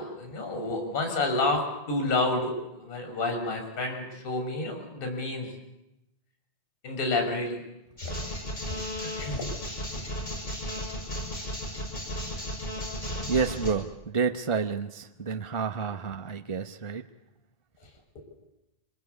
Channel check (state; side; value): late; right; 1.4 ms